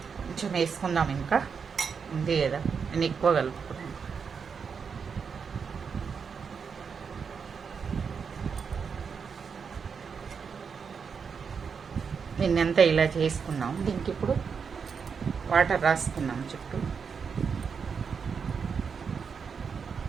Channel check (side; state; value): left; quieter; 6.1 dB